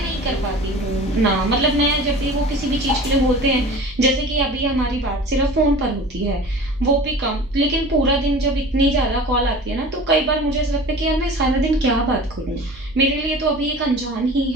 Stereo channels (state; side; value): noise; right; hum, 23 dB below the sound